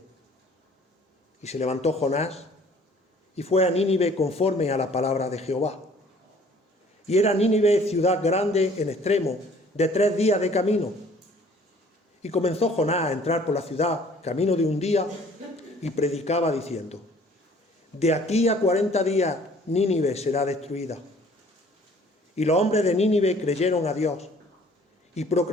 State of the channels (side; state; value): both; normal; correlation 0.55